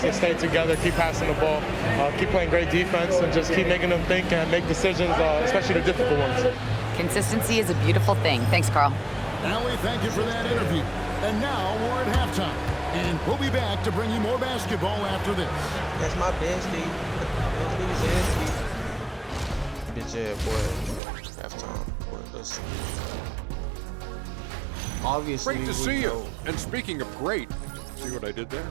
Just stay together, keep passing the ball, keep playing great defense, and just keep making them think and make decisions, especially the difficult ones. Consistency is a beautiful thing. Thanks, Carl. Allie, thank you for that interview. And now we're at halftime. And we'll be back to bring you more basketball after this. That's my bestie. Bitch ass boy. Halftime. Let's see. Obviously, Great to see you. And speaking of great, see what I did there?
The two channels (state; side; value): drops out; left; at 21.0 s